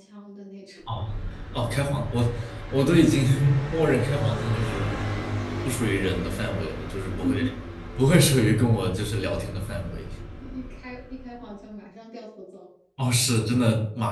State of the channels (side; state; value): both; identical; correlation 1.00